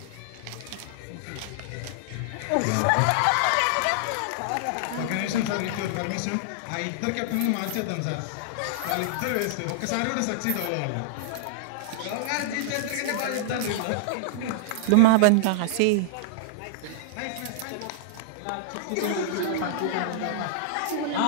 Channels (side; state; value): both; different; correlation -0.01